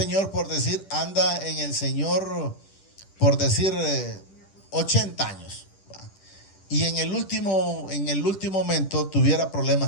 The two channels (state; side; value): late; right; 10 ms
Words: por decir, anda en el Señor, por decir, 80 años. Y en el último momento tuviera